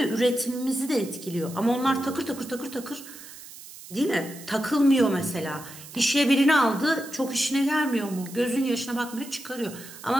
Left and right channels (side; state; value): right; noise; hiss, 16 dB below the sound